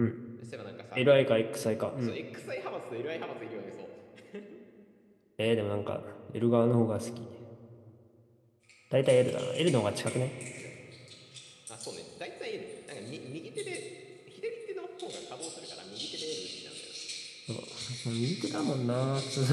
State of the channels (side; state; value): both; identical; correlation 1.00